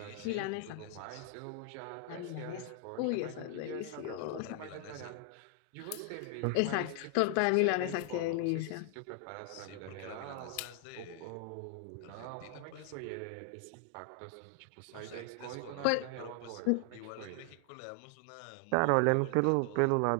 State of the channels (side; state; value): both; different; correlation 0.00